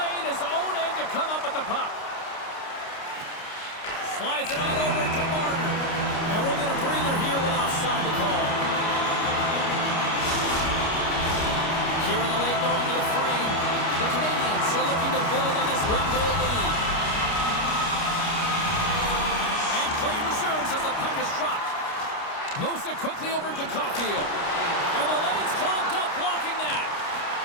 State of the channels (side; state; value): right; late; 29 ms